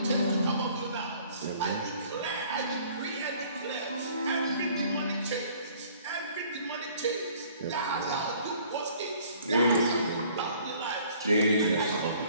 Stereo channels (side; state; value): both; inverted; correlation -0.55